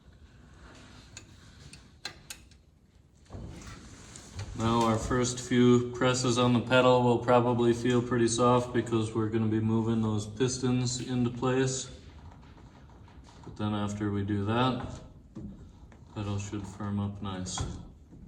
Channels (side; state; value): both; identical; correlation 1.00